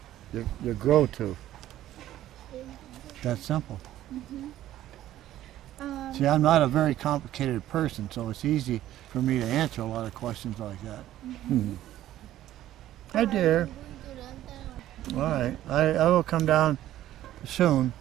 you grow to. That's simple. See, I'm not a very complicated person, so it's easy for me to answer a lot of questions like that. Hi, dear. All right, I will come down soon.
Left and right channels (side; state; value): left; quieter; 13.4 dB